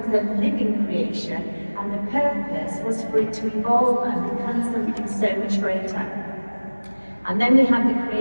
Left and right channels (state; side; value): inverted; both; correlation -1.00